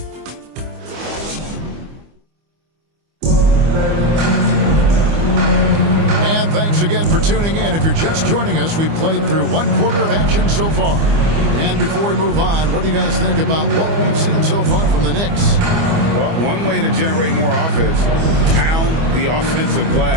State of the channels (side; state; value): left; late; 25 ms